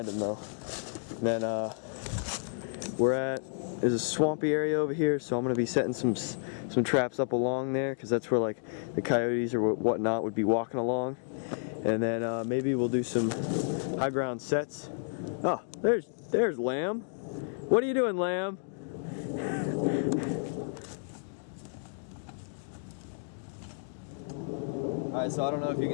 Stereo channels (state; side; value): silent; right; digital silence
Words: him though. And then there's a swampy area over here, so I'm going to be setting some traps up along there, because that's where like the coyotes or whatnot would be walking along. And then maybe we'll do some high ground sets. Oh, there's Lamb. What are you doing, Lamb? Alright, so I don't know if you